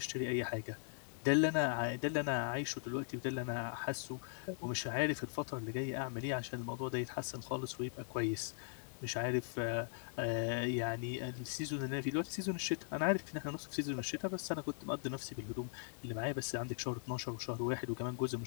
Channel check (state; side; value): silent; right; digital silence